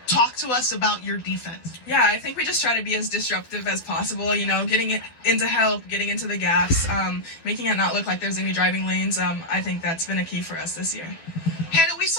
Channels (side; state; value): right; late; 12 ms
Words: talk to us about your defense? Yeah, I think we just try to be as disruptive as possible. You know, getting it into help, getting into the gaps, making it not look like there's any driving lanes. I think that's been a key for us this year. Hannah, we